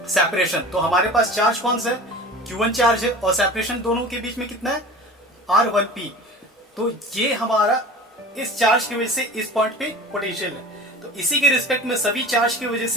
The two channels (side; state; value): both; normal; correlation 0.38